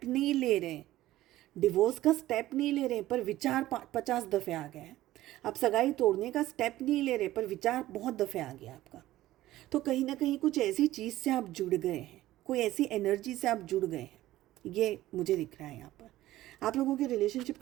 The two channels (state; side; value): quieter; left; 15.5 dB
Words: नहीं ले रहे हैं, डिवोर्स का स्टेप नहीं ले रहे, पर विचार 50 दफ़े आ गए हैं। आप सगाई तोड़ने का स्टेप नहीं ले रहे, पर विचार बहुत दफ़े आ गया आपका। तो कहीं ना कहीं कुछ ऐसी चीज़ से आप जुड़ गए हैं, कोई ऐसी एनर्जी से आप जुड़ गए हैं, ये मुझे दिख रहा है यहाँ पर। आप लोगों के रिलेशनशिप